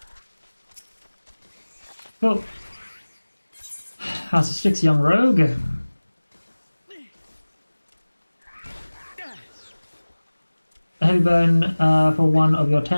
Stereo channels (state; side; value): inverted; both; correlation -1.00